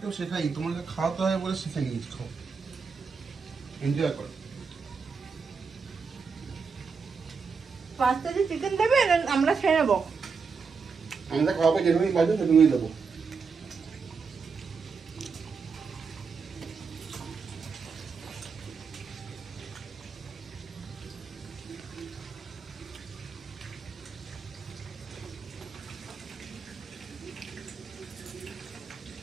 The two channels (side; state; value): left; quieter; 5.3 dB